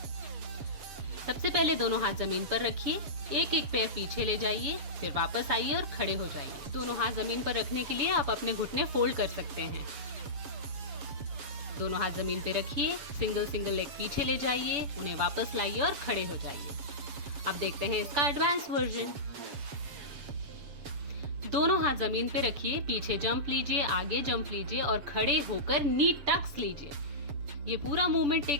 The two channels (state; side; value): late; left; 7.0 ms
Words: सबसे पहले दोनों हाथ जमीन पर रखिए। एक एक पैर पीछे ले जाइए, फिर वापस आइए और खड़े हो जाइए। दोनों हाथ जमीन पर रखने के लिए आप अपने घुटने फोल्ड कर सकते हैं। दोनों हाथ जमीन पे रखिए, सिंगल सिंगल लेग पीछे ले जाइए, उन्हें वापस लाइए और खड़े हो जाइए। अब देखते हैं इसका एडवांस वर्जन। दोनों हाथ जमीन पे रखिए, पीछे जंप लीजिए, आगे जंप लीजिए और खड़े होकर नी टक्स लीजिए। ये पूरा मूवमेंट